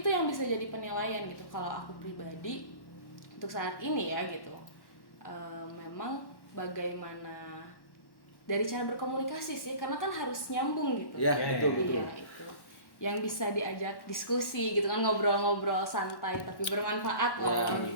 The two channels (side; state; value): right; late; 1.1 ms